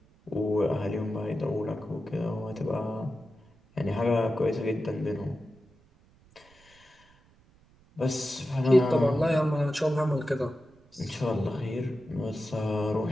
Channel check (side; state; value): right; noise; rumble, 29 dB below the sound